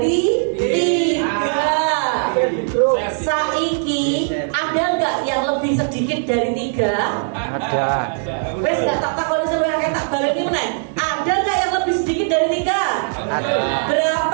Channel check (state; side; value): silent; left; digital silence